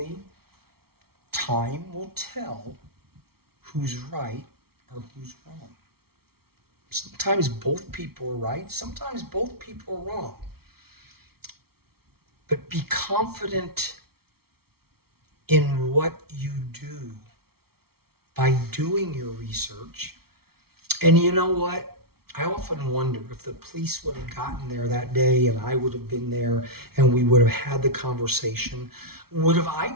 time will tell who's right or who's wrong. Sometimes both people are right, sometimes both people are wrong. But be confident in what you do by doing your research. And you know what? I often wonder if the police would have gotten there that day and I would have been there and we would have had the conversation. Would have I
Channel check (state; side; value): late; left; 0.95 ms